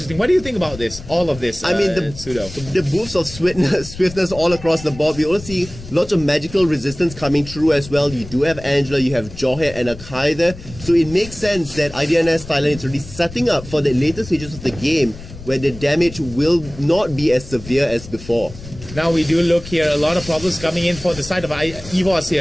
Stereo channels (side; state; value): left; noise; rumble, 15 dB below the sound